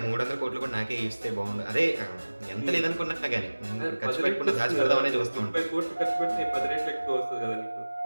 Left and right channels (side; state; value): both; inverted; correlation -1.00